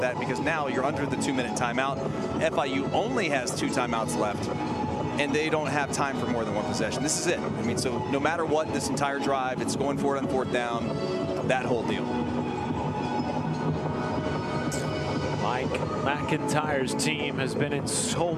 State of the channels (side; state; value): both; identical; correlation 1.00